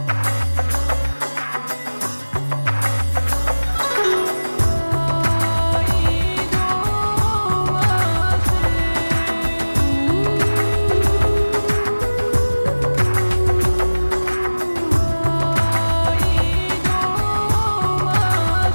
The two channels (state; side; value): inverted; both; correlation -1.00